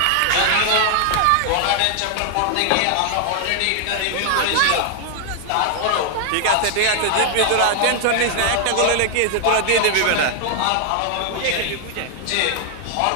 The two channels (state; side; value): different; both; correlation 0.00